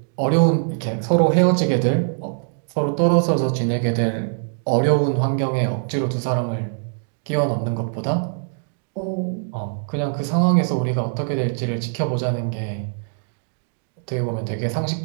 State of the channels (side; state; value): left; silent; digital silence